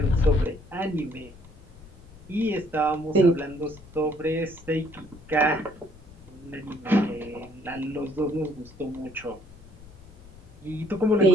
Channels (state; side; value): noise; left; rumble, 20 dB below the sound